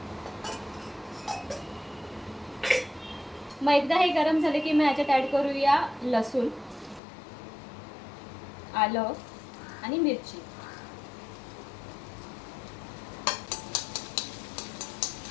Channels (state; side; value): drops out; right; at 7.0 s